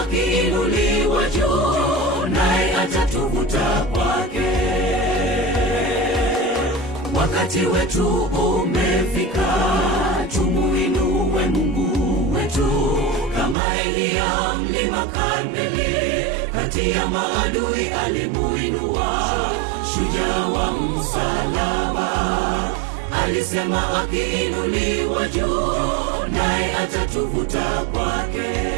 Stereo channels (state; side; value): drops out; left; at 13.6 s